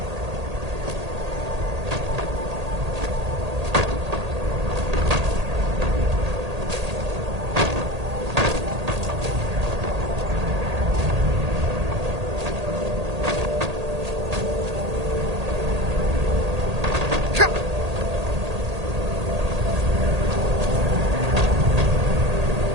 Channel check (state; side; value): late; left; 1.8 ms